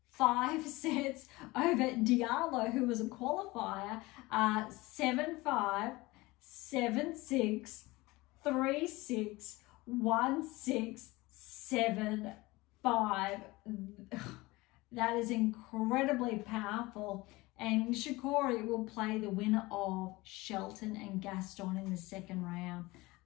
5 sets over Diallo, who was a qualifier, 7-5, 7-6, 3-6, 1-6, 7-5. That is incredibly powerful. And Nishikori will play the winner of Shelton and Gaston in the 2nd round.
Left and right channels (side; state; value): right; quieter; 21.3 dB